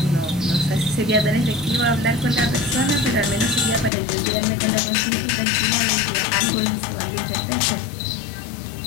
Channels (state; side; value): drops out; right; at 3.9 s